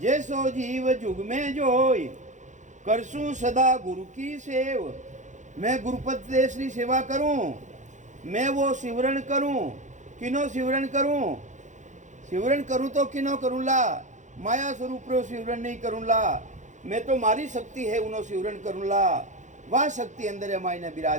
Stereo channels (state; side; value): late; left; 0.35 ms